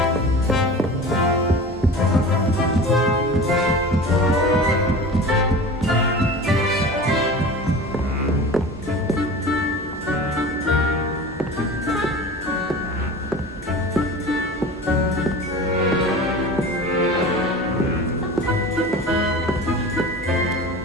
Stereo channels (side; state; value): both; normal; correlation 0.35